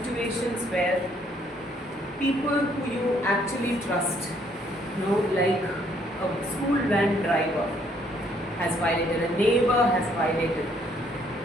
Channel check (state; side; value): normal; both; correlation 0.66